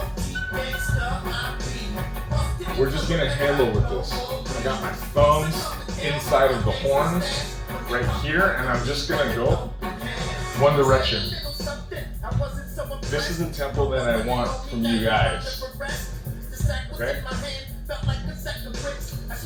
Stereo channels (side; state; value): both; identical; correlation 1.00